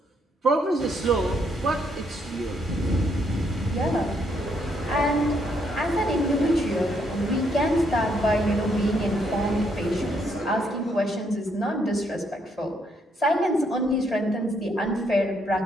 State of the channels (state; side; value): normal; both; correlation 0.73